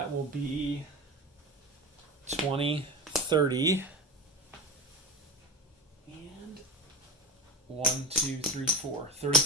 will be 20, 30, and 1, 2, 3, 4.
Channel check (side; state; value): both; normal; correlation 0.25